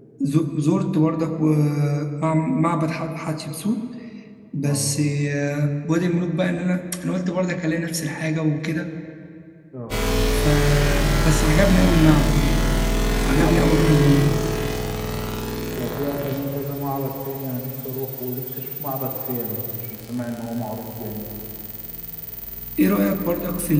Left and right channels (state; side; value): identical; both; correlation 1.00